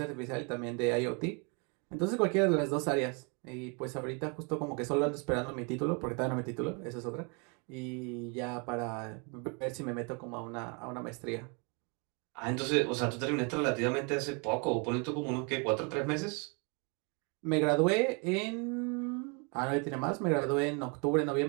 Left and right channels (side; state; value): left; quieter; 34.5 dB